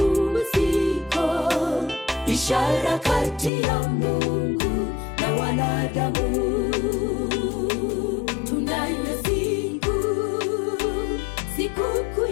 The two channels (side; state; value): right; drops out; at 3.5 s